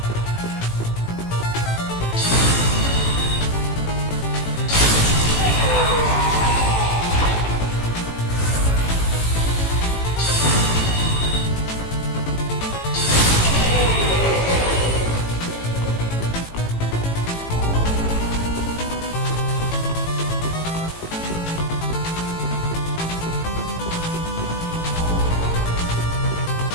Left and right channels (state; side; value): late; right; 18 ms